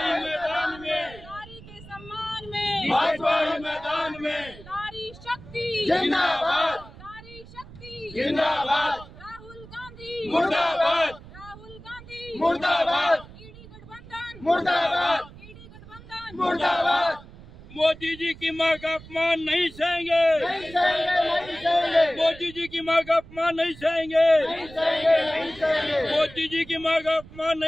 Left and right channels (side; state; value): right; noise; rumble, 18 dB below the sound